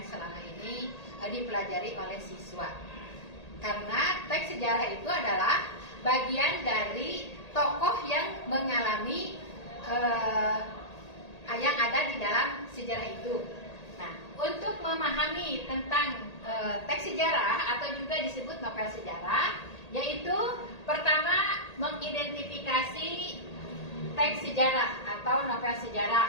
selama ini dipelajari oleh siswa. Karena teks sejarah itu adalah bagian dari tokoh yang mengalami yang ada di dalam sejarah itu. Nah, untuk memahami tentang teks sejarah atau juga disebut novel sejarah, yaitu pertama mengidentifikasi teks sejarah atau novel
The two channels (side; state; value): right; late; 1.8 ms